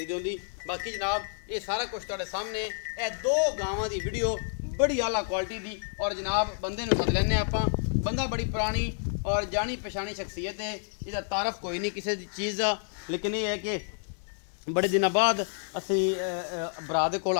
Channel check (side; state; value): right; silent; digital silence